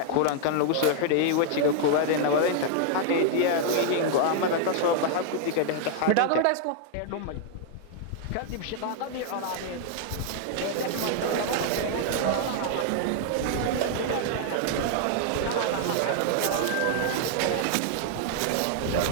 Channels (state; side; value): different; both; correlation 0.00